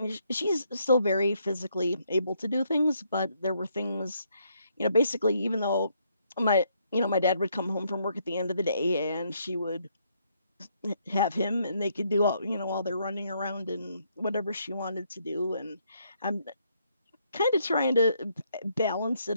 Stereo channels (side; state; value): both; inverted; correlation -0.73